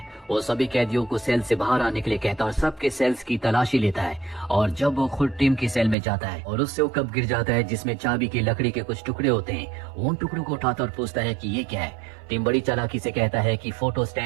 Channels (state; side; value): drops out; left; at 6.0 s